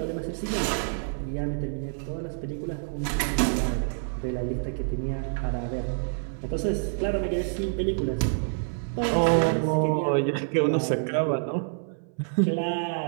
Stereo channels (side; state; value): left; silent; 58 dB below the other